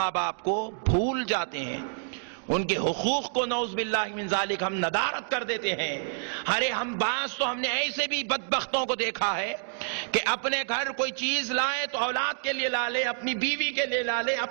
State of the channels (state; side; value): silent; left; digital silence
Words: باپ کو بھول جاتے ہیں، ان کے حقوق کو نعوذ باللہ من ذالک ہم ندارت کر دیتے ہیں۔ ارے ہم بعض تو ہم نے ایسے بھی بدبختوں کو دیکھا ہے کہ اپنے گھر کوئی چیز لائے تو اولاد کے لیے لا لے، اپنی بیوی کے لیے لا لے،